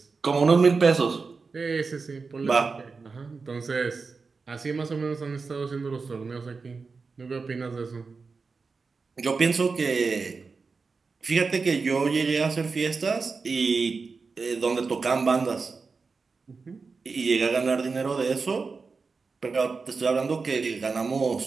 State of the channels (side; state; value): left; quieter; 4.6 dB